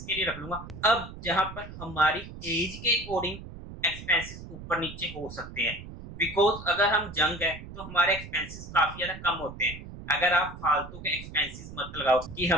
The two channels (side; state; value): right; noise; rumble, 13 dB below the sound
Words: के लिए रख लूंगा। अब जहां पर हमारी एज के अकॉर्डिंग एक्सपेंसेस ऊपर नीचे हो सकते हैं, बिकॉज अगर हम जंग है तो हमारे एक्सपेंसेस काफी ज्यादा कम होते हैं। अगर आप फालतू के एक्सपेंसेस मत लगाओ कि